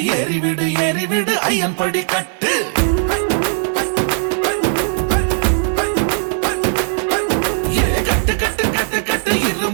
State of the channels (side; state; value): left; silent; digital silence